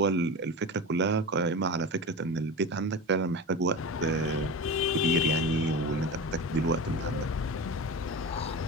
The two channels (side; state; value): both; normal; correlation 0.27